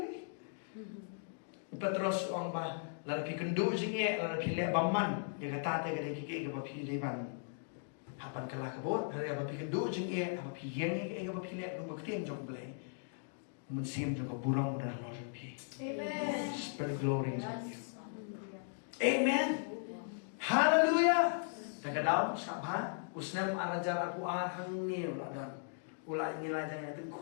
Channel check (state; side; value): silent; right; digital silence